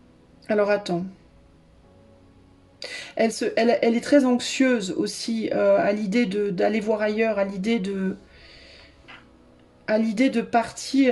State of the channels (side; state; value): both; identical; correlation 1.00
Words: Alors attends. Elle est très anxieuse aussi à l'idée d'aller voir ailleurs, à l'idée de